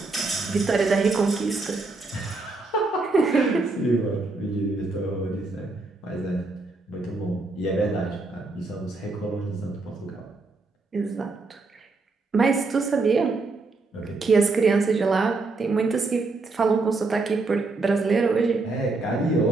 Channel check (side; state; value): left; quieter; 3.6 dB